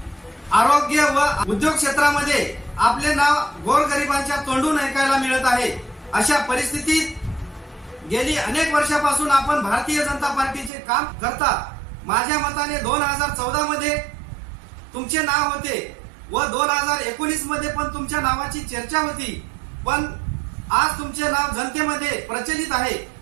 आरोग्य व उद्योग क्षेत्रामध्ये आपले नाव गोरगरिबांच्या तोंडून ऐकायला मिळत आहे। अशा परिस्थितीत गेली अनेक वर्षापासून आपण भारतीय जनता पार्टीचे काम करता। माझ्या मताने 2014 मध्ये तुमचे नाव होते व 2019 मध्ये पण तुमच्या नावाची चर्चा होती, पण आज तुमचे नाव जनतेमध्ये प्रचलित आहे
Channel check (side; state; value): left; drops out; at 10.7 s